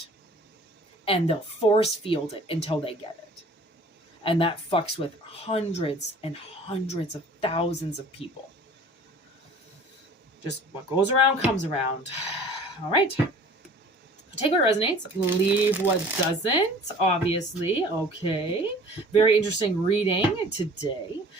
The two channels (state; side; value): normal; both; correlation 0.48